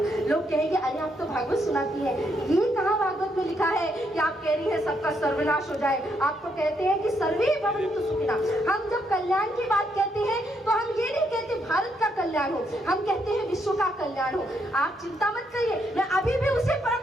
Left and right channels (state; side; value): normal; both; correlation 0.76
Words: लोग कहेंगे अरे आप तो भागवत सुनाती है, ये कहाँ भागवत में लिखा है कि आप कह रही है सबका सर्वनाश हो जाए। आप तो कहते हैं कि सर्वे भवन्तु सुखिनः। हम जब कल्याण की बात कहते हैं तो हम ये नहीं कहते भारत का कल्याण हो, हम कहते हैं विश्व का कल्याण हो। आप चिंता मत करिए, मैं अभी भी उसी